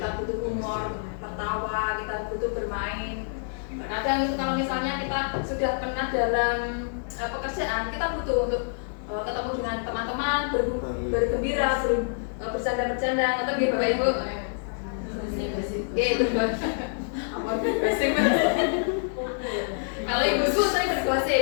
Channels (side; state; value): right; silent; 59 dB below the other